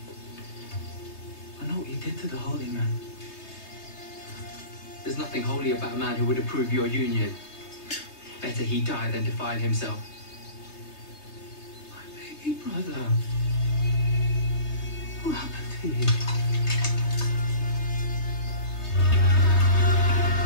I know what you did to the Holy Man. There's nothing holy about a man who would approve your union. Better he die than defile himself. My baby brother. What happened to you?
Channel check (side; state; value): right; late; 3.3 ms